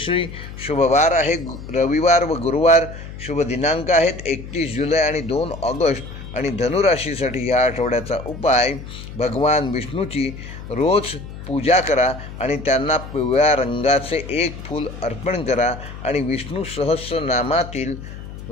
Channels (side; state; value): left; noise; hum, 12 dB below the sound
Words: शुभवार आहे रविवार व गुरुवार. शुभ दिनांक आहेत 31 जुलै आणि 2 ऑगस्ट. आणि धनुराशीसाठी या आठवड्याचा उपाय भगवान विष्णूची रोज पूजा करा आणि त्यांना पिवळ्या रंगाचे 1 फूल अर्पण करा आणि विष्णू सहस्रनामातील